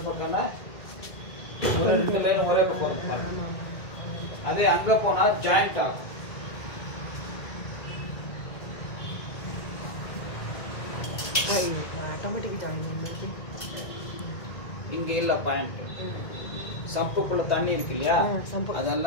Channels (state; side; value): late; right; 1.9 ms